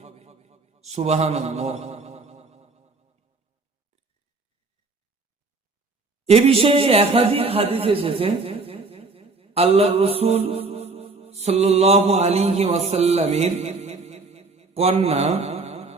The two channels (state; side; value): quieter; left; 3.8 dB